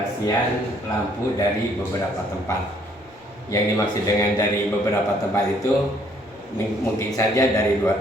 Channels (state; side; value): normal; both; correlation 0.64